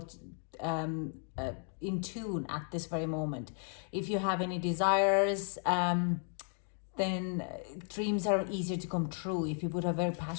in tune at this very moment. If you have any desires, then dreams are easier to come true if you put a very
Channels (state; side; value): silent; right; 55 dB below the other